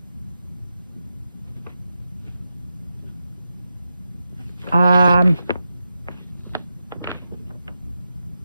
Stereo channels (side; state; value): both; inverted; correlation -0.89